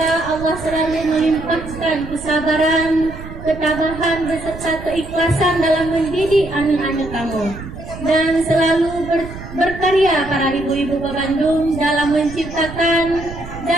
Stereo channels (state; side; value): noise; right; rumble, 12 dB below the sound